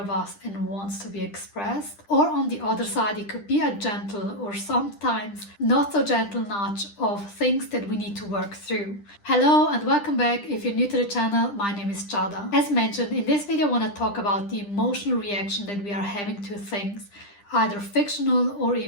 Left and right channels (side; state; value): right; late; 10 ms